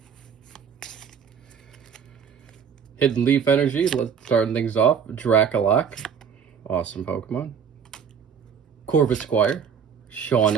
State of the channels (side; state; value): left; quieter; 7.2 dB